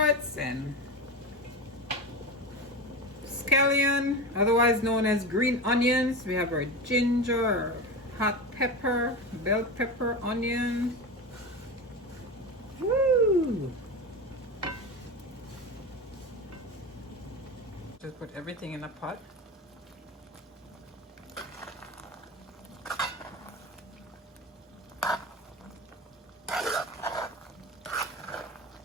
and scallion, otherwise known as green onions. We have our ginger, hot pepper, bell pepper, onion. Woo! Just put everything in a pot.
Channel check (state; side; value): normal; both; correlation 0.24